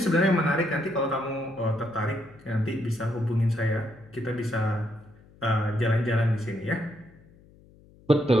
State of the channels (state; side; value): noise; left; hum, 26 dB below the sound